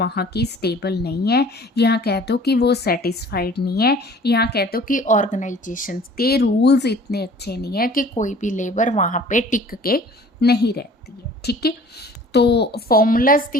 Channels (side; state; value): both; normal; correlation 0.49